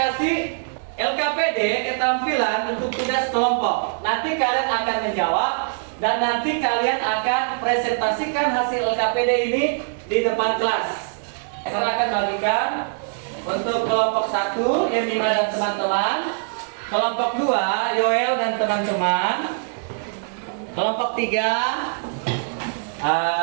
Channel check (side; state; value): left; silent; digital silence